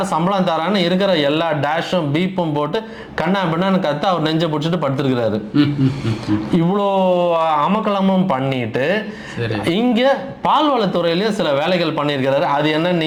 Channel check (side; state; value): both; identical; correlation 1.00